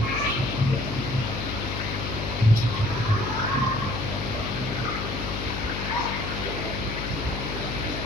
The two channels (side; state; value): left; noise; hum, 5 dB below the sound